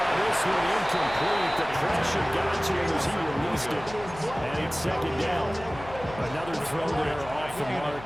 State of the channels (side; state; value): left; noise; hum, 15 dB below the sound